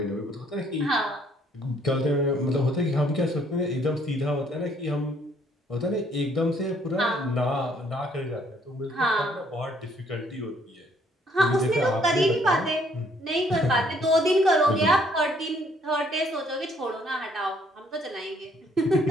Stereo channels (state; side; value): normal; both; correlation 0.65